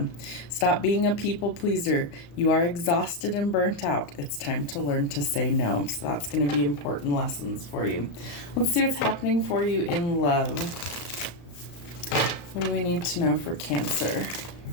Stop being a people pleaser. You are exhausted and burnt out. It's time to learn to say no. So that's going to be important lessons for you. Let's see what's happening for you in love. What do we need to know for Cancer?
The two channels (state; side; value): late; right; 35 ms